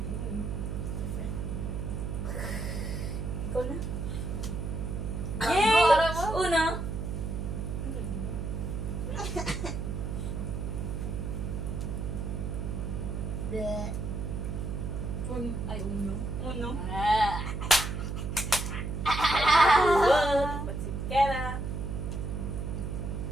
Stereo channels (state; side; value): noise; right; hum, 3 dB below the sound